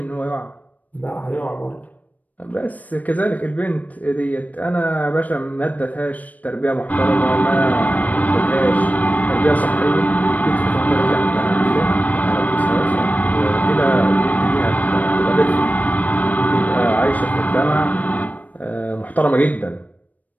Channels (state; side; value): late; right; 0.075 ms